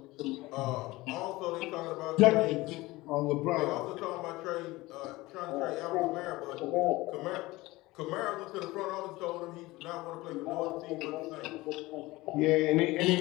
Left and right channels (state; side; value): quieter; right; 20.1 dB